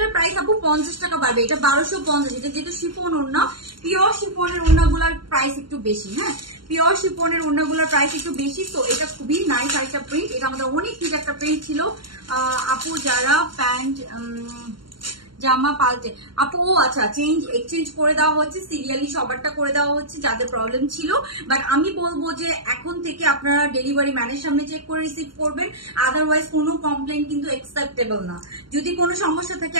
প্রাইস আপু 50 টাকা বাড়বে, এটা 1250। এটা যেহেতু শিফন ওড়না, পিওর শিফনের ওড়নাগুলোর প্রাইস একটু বেশি। হ্যাঁ, পিওর শিফনের ওড়নাগুলোর প্রাইস একটু বেশি। তো এটা খুবই নাইস আরেকটা প্রিন্ট, এটা আমাদের অনেক হিট একটা প্রিন্ট ছিল। আপু যারা প্যান্ট জামা পাল্টে আপু, ও আচ্ছা, এক্সচেঞ্জ করে দেওয়া হচ্ছে, সিরিয়ালি সবারটা করে দেওয়া হচ্ছে যাদের প্রবলেম ছিল। বাট আমি বলবো যে এখন থেকে আপনারা ডেলিভারি ম্যানের সামনে চেক করে রিসিভ করবেন, আদারওয়াইজ কোনো কমপ্লেন কিন্তু অ্যাকসেপ্টেবল না। যদি কোনো সমস্যা থাকে,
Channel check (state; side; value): late; left; 0.73 ms